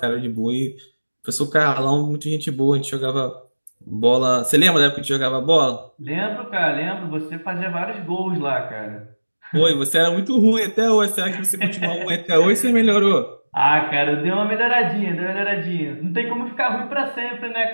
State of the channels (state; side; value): inverted; both; correlation -1.00